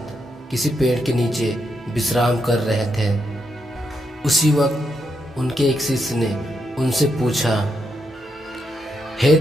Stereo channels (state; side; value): normal; both; correlation 0.81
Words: किसी पेड़ के नीचे विश्राम कर रहे थे। उसी वक्त उनके एक शिष्य ने उनसे पूछा, हे